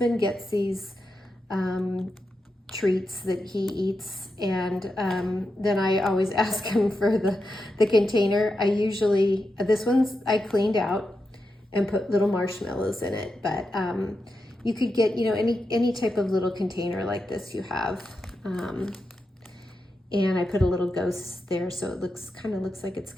gets these treats that he eats, and then I always ask him for the container. This one's I cleaned out and put little marshmallows in it, but you could get, any type of little container like this you have. And I put a little ghost there, so it kind of looks like it's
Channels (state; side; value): normal; both; correlation 0.88